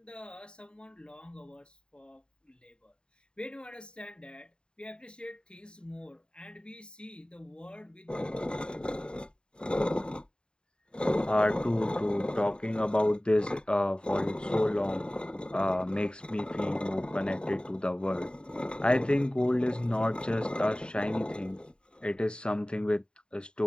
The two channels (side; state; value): right; late; 0.050 ms